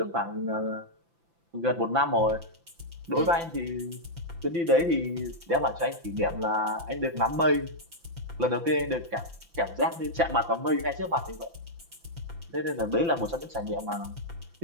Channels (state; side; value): late; left; 5.9 ms